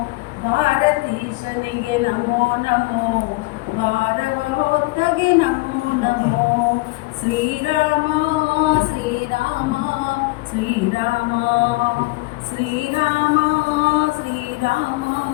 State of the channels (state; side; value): quieter; right; 22.6 dB